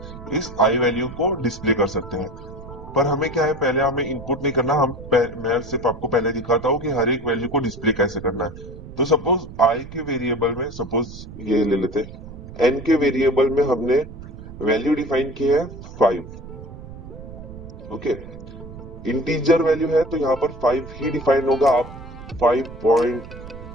इस आई वैल्यू को डिस्प्ले कर सकते हैं। पर हमें क्या है, पहले हमें इनपुट नहीं करना, मैं सिर्फ आपको पहले दिखाता हूँ कि हर एक वैल्यू को डिस्प्ले कैसे करना है। तो सपोज आई के वेरिएबल में, सपोज ये ले लेते हैं, एन के वेरिएबल में हमने वैल्यू डिफाइन की है 5। ओके, इंटीजर वैल्यू है तो यहाँ पर 5 ही डिफाइन होगा। आप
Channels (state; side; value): noise; right; rumble, 14 dB below the sound